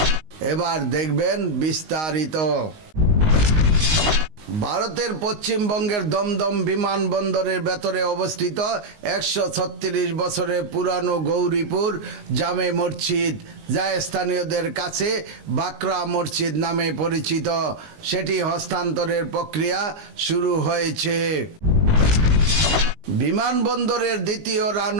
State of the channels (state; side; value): late; left; 19 ms